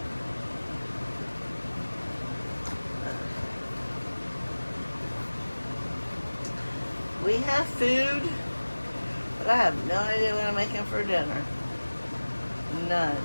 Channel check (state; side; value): inverted; both; correlation -1.00